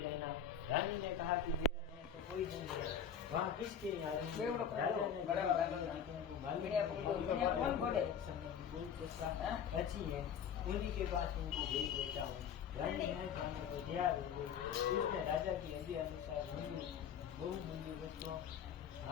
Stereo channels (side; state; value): right; quieter; 8.0 dB